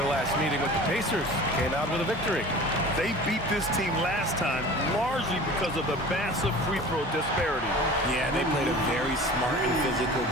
last meeting with the Pacers. Came out with a victory. They beat this team last time largely because of the massive free throw disparity. Yeah, they played a very smart and physical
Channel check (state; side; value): normal; both; correlation 0.40